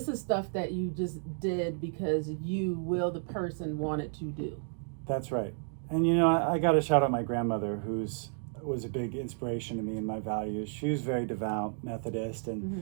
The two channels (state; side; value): silent; left; 56 dB below the other